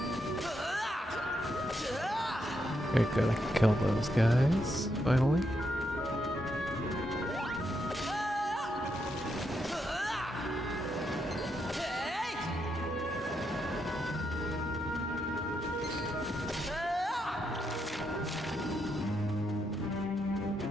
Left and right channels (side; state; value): both; normal; correlation 0.80